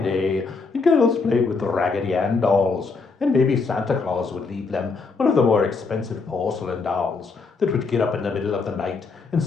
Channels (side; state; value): right; quieter; 4.4 dB